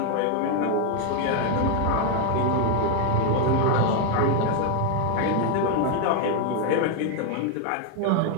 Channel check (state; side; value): different; both; correlation 0.01